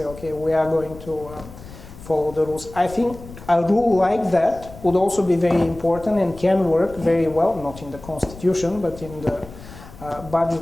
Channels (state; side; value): noise; left; rumble, 17 dB below the sound